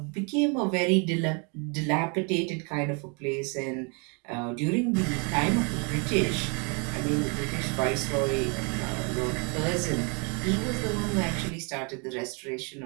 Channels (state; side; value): quieter; left; 34.6 dB